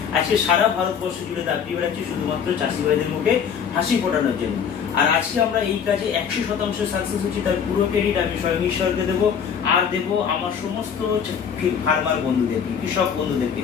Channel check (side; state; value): right; quieter; 7.4 dB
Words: আজকে সারা ভারতবর্ষ জুড়ে দাপড়ি বেড়াচ্ছি শুধুমাত্র চাষি ভাইদের মুখে হাসি ফোটানোর জন্য। আর আজকে আমরা এই কাজে 100% সাকসেস হচ্ছি, তার পুরো ক্রেডিট আমি স্বয়ং ঈশ্বরকে দেবো, আর দেবো আমার সমস্ত ফার্মার বন্ধুদেরকে, কৃষক বন্ধুদেরকে,